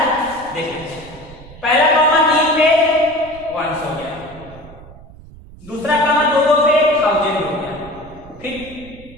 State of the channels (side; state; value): right; noise; rumble, 19 dB below the sound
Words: देख लेते हैं। पहला कॉमा 3 पे 1 हो गया, दूसरा कॉमा 2 पे 1000 हो गया, फिर